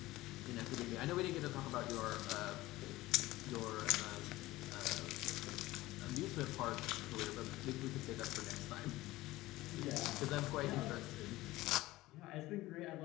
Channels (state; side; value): quieter; right; 18.0 dB